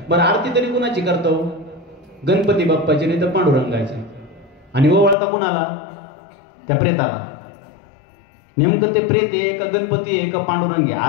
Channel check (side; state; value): right; drops out; at 5.2 s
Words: बरं आरती तरी कुणाची करतो? गणपती बाप्पाची, नाही तर पांडुरंगाची. आणि ओवाळता कुणाला? त्या प्रेताला. नेमकं ते प्रेत आहे का गणपती आहे का पांडुरंग आहे?